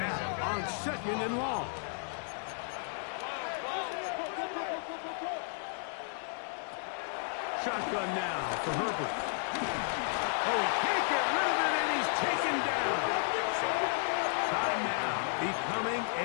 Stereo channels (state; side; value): silent; right; 56 dB below the other